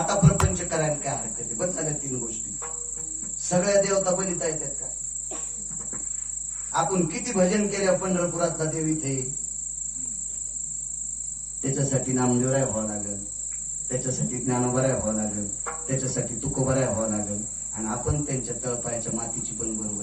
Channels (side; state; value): both; identical; correlation 1.00